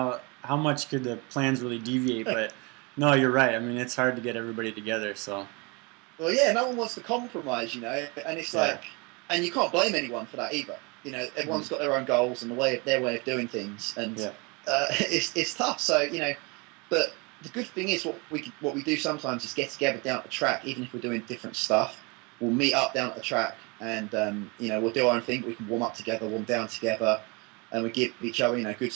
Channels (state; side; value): quieter; left; 28.8 dB